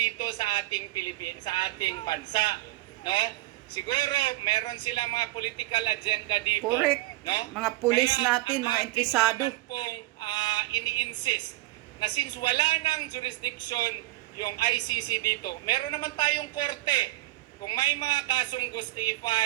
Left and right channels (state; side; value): quieter; left; 18.5 dB